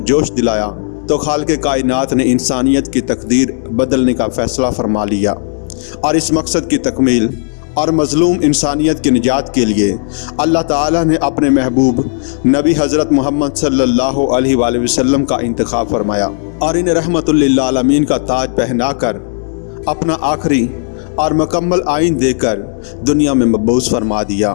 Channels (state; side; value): silent; right; 68 dB below the other